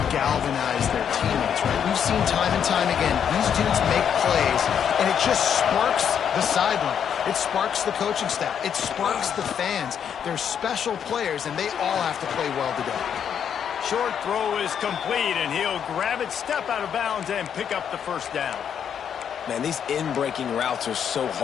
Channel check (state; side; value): quieter; right; 8.2 dB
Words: galvanize their teammates, right? We've seen time and time again, these dudes make plays, and it just sparks the sideline. It sparks the coaching staff. It sparks the fans. They're special players, and they all have to play well today. Short throw is complete, and he'll grab it, step out of bounds, and pick up the first down. Man, these in-breaking routes are so